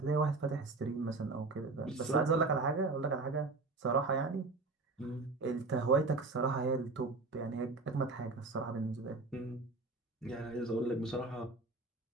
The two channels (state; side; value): quieter; left; 3.6 dB